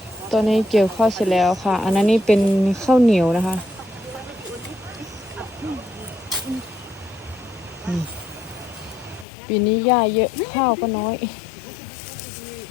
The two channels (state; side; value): drops out; right; at 9.2 s